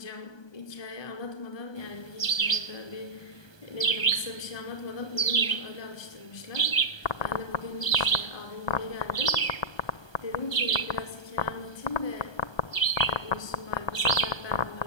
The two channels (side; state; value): right; late; 1.2 ms